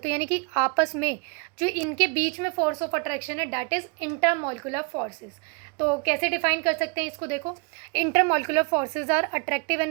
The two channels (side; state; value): left; quieter; 32.8 dB